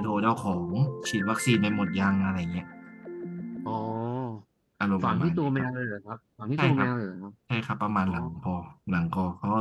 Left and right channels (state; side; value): identical; both; correlation 1.00